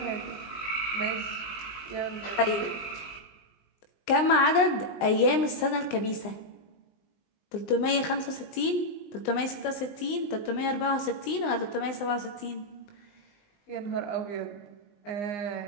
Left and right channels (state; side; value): late; right; 19 ms